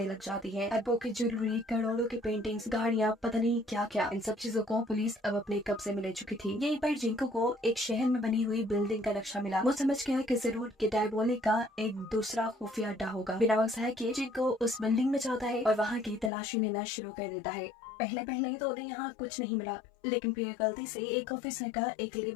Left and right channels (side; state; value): right; drops out; at 16.3 s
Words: लग जाती है। एप्पो की ज्वेलरी, करोड़ों की पेंटिंग्स, गाड़ियाँ, पता नहीं क्या क्या। इन सब चीजों को पुलिस अब अपने कब्जे में ले चुकी थी। यहीं पर जिंको को एक शहर में बनी हुई बिल्डिंग का नक्शा मिला। वो समझ गया कि जरूर कि डायबोलिक का एक दूसरा खुफिया अड्डा होगा। बिना वक्त है कि जिंको उस बिल्डिंग में जाता है और वहाँ की तलाशी लेना शुरू कर देता है। पहले पहले तो उन्हें यहाँ कुछ नहीं मिला, लेकिन फिर गलती से एक ऑफिसर का एक